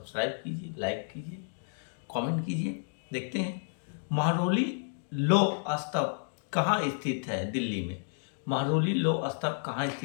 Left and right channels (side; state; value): right; silent; digital silence